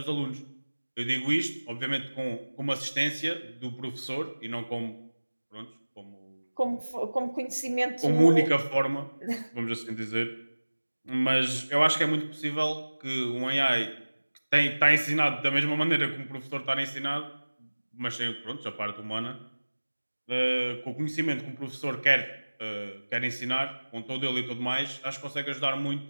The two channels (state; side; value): inverted; both; correlation -1.00